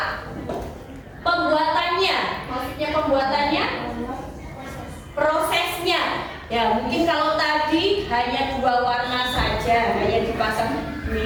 Pembuatannya. Maksudnya pembuatannya? Prosesnya. Ya, mungkin kalau tadi hanya dua warna saja, hanya dipasang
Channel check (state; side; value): identical; both; correlation 1.00